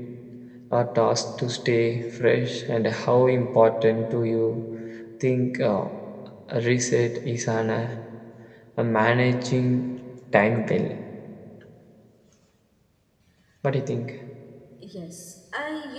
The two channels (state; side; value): identical; both; correlation 1.00